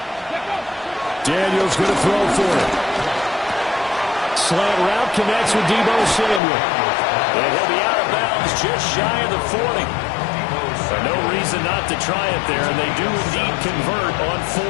Daniels going to throw for it. Slant route connects with Deebo Samuel. And he'll be out of bounds just shy of the 40. No reason not to try it there, and they do indeed convert on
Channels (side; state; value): right; drops out; at 6.4 s